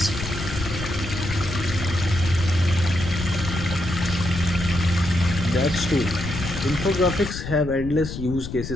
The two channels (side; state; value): left; noise; rumble, 7 dB below the sound